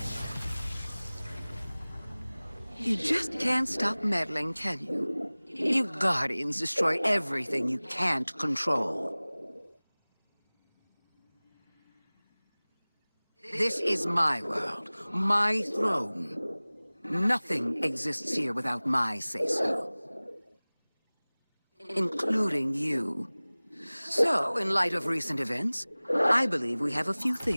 You just can't stop meddling, can you? You Guardians destroy everything you can't control. This is my world, my throne. Nothing exists here without my say-so. Including you. So, in light of recent events, I believe we have a few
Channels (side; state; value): both; inverted; correlation -1.00